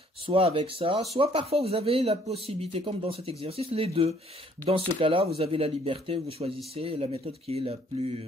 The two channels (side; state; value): both; normal; correlation 0.62